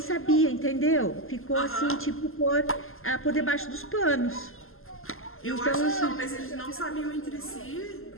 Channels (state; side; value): late; right; 0.61 ms